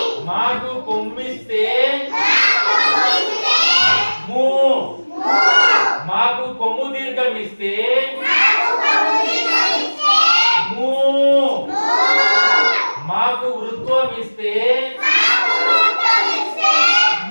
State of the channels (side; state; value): both; inverted; correlation -1.00